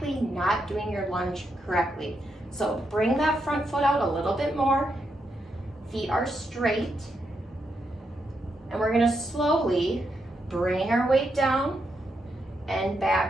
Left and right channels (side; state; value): both; normal; correlation 0.82